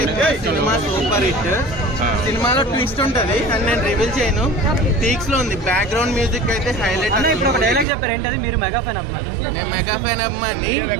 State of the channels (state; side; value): drops out; left; at 7.9 s